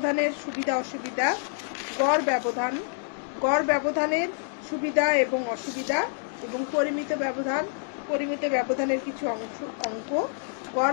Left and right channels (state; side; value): silent; right; digital silence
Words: সুবিধা অসুবিধা, গড় ব্যবধানের সুবিধা এবং অসুবিধা এবং পরিমিত ব্যবধানের কিছু অঙ্ক,